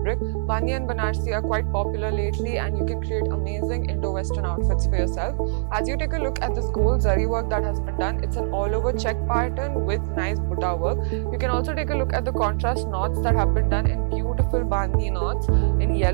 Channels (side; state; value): left; silent; 63 dB below the other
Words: Bandhni and Banarsi are quite popular lately and you can create amazing Indo-Western outfits for yourself. As you take a look at this gold zari work that has been done, it's an all over check pattern with nice butta work. You can also take a look at the contrast knots that have been done in beautiful Bandhni knots in